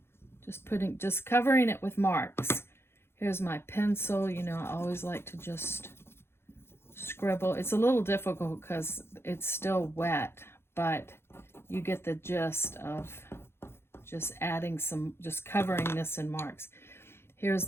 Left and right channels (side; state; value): right; late; 0.12 ms